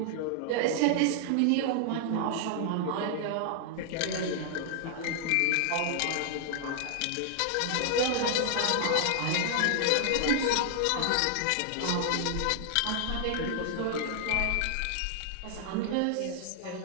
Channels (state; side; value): different; both; correlation 0.00